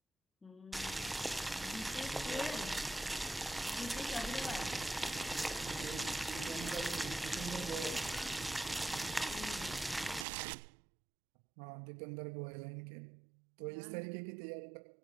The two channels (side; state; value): left; drops out; at 10.2 s